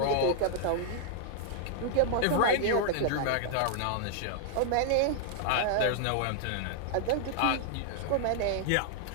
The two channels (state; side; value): different; both; correlation -0.01